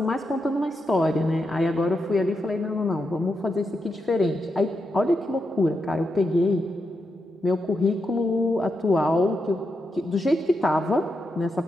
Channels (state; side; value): normal; both; correlation 0.85